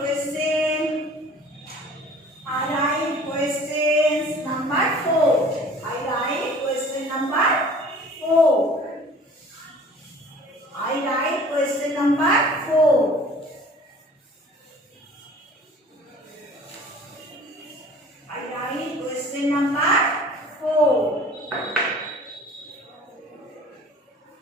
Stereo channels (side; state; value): both; normal; correlation 0.47